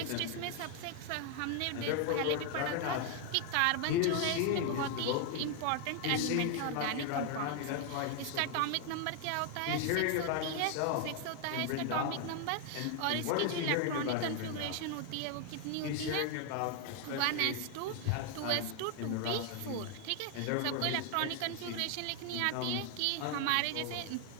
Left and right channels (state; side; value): different; both; correlation 0.00